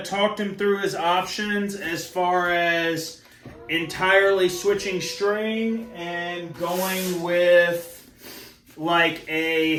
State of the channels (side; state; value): both; identical; correlation 1.00